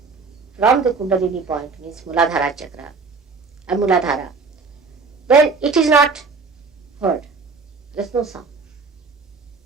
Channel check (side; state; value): left; quieter; 4.5 dB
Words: from the Kundalini point, means Muladhara chakra and Muladhara, then it is not heard. There is no sound.